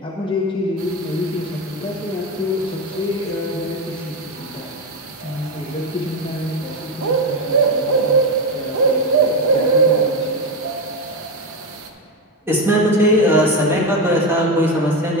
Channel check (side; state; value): both; normal; correlation 0.13